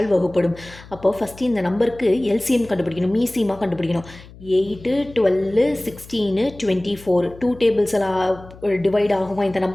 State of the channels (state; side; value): noise; left; hum, 20 dB below the sound